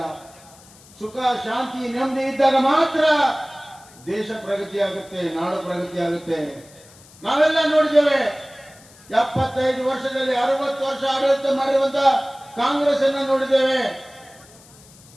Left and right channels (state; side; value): noise; left; hiss, 24 dB below the sound